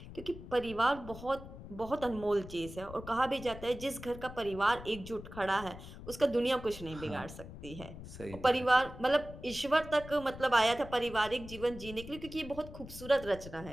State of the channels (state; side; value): noise; left; rumble, 13 dB below the sound